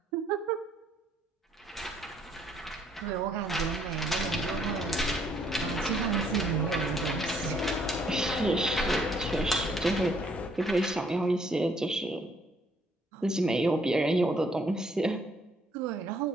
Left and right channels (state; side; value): normal; both; correlation 0.66